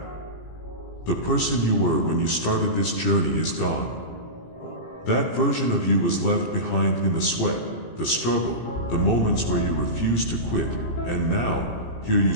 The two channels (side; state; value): right; late; 17 ms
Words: The person you were when you started this journey is gone. That version of you was left behind in the sweat, the struggle, the moments where you refused to quit, and now, here you